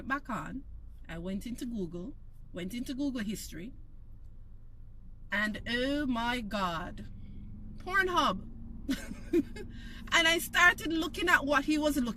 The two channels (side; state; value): both; identical; correlation 1.00